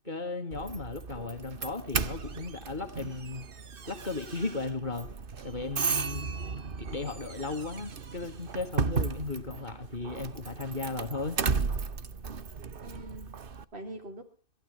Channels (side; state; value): left; late; 2.6 ms